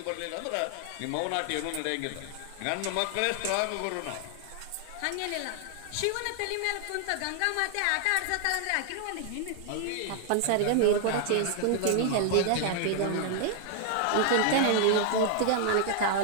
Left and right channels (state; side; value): different; both; correlation 0.00